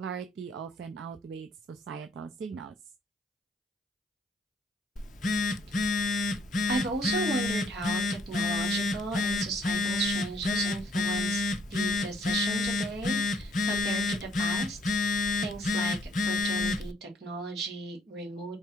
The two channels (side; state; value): both; normal; correlation 0.65